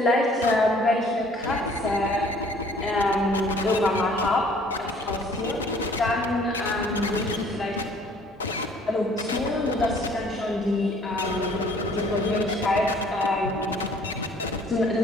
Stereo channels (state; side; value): normal; both; correlation 0.56